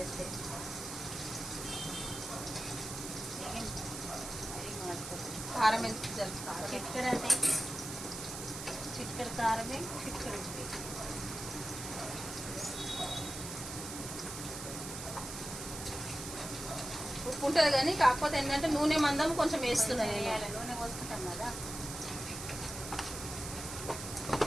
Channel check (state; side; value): noise; right; hiss, 8 dB below the sound